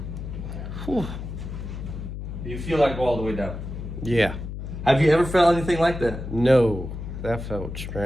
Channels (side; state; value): left; noise; hum, 8 dB below the sound